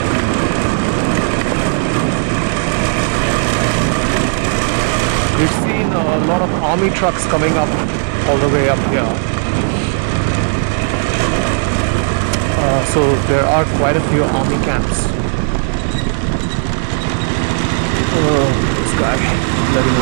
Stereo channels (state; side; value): silent; left; digital silence